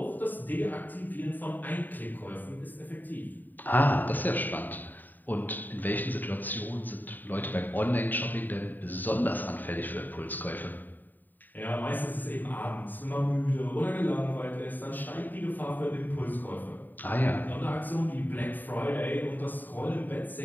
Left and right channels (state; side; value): late; right; 0.089 ms